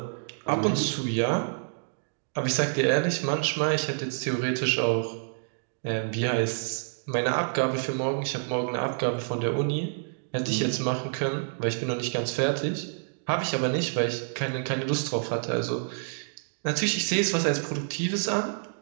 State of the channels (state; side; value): silent; left; digital silence